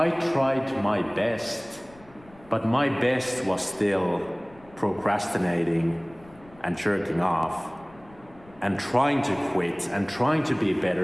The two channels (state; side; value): noise; left; rumble, 25 dB below the sound